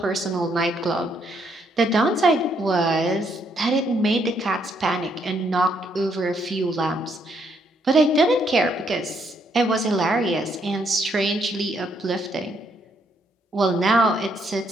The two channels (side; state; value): both; normal; correlation 0.73